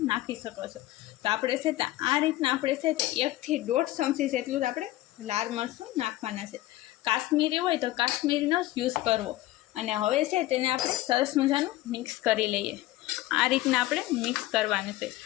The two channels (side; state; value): right; quieter; 16.7 dB